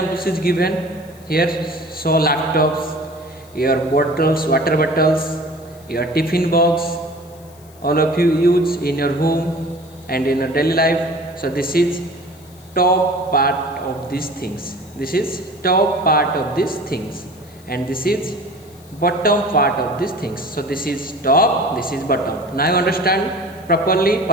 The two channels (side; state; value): left; noise; hiss, 26 dB below the sound